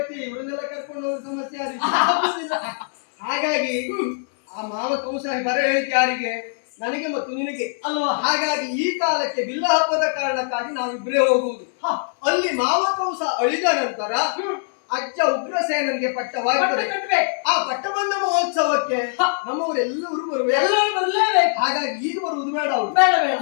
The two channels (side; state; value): right; silent; 64 dB below the other